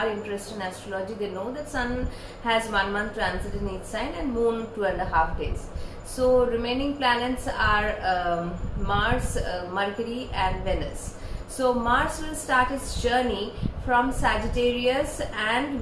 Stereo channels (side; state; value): both; identical; correlation 1.00